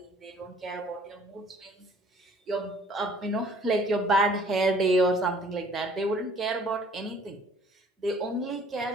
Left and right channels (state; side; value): normal; both; correlation 0.56